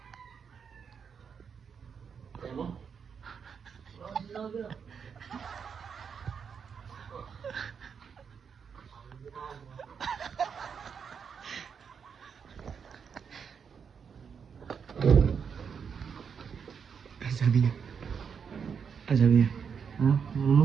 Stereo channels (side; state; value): left; quieter; 6.6 dB